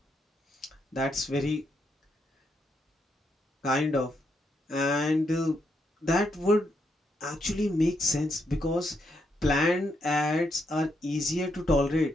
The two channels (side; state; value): both; normal; correlation 0.79